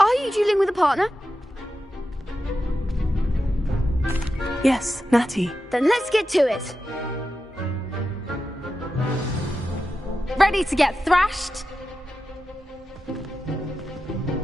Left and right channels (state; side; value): normal; both; correlation 0.91